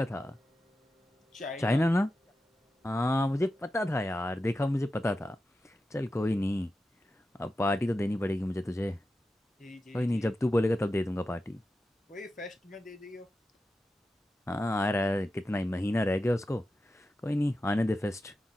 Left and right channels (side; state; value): both; normal; correlation 0.91